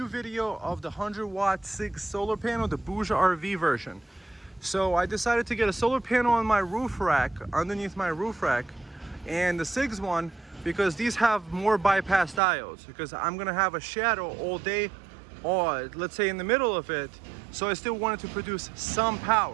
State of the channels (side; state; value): left; drops out; at 12.4 s